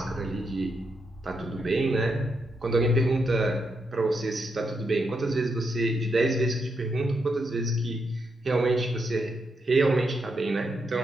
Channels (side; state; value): both; normal; correlation 0.82